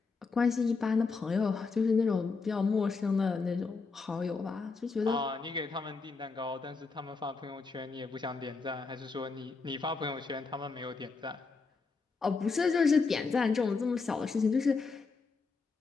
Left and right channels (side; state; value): right; quieter; 4.5 dB